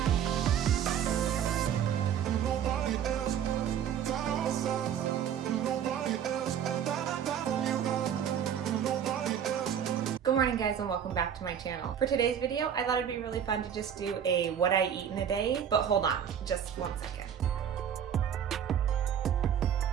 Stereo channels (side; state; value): left; quieter; 8.8 dB